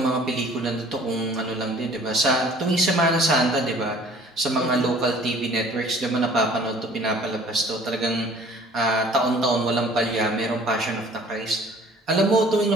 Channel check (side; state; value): both; normal; correlation 0.52